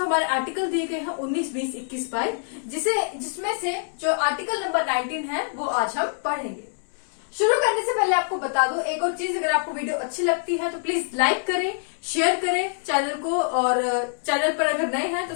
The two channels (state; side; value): silent; right; digital silence